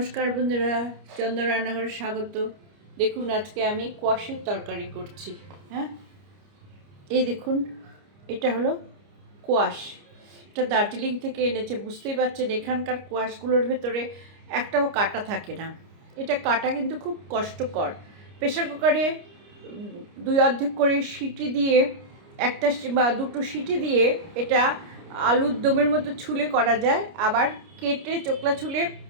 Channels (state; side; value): late; left; 29 ms